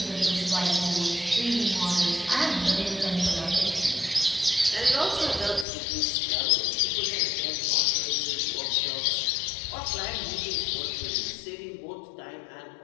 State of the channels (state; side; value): drops out; right; at 5.7 s